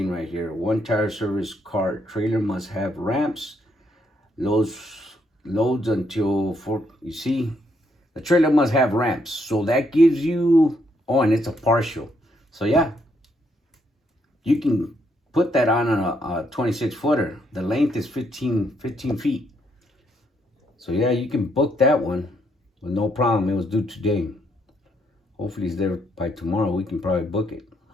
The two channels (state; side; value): normal; both; correlation 0.74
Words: right here. One tire service car trailer must have ramps. Loads until 4. You see, the trailer must have ramps. So that gives you, oh, and it's a partial. So yeah, you can put that on a 26-footer. The length is 15 feet. So yeah, you can book that one with no problem. It was due today. Hopefully it's there by tomorrow. We can probably book it.